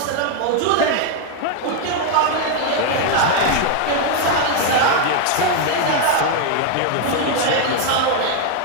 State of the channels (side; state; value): both; different; correlation 0.01